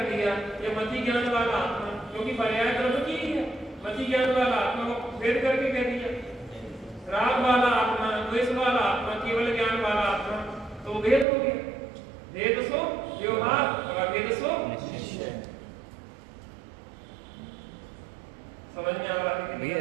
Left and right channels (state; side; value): drops out; left; at 11.2 s